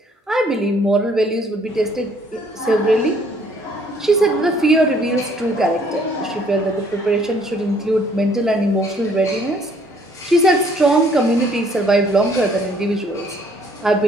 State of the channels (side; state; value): both; normal; correlation 0.62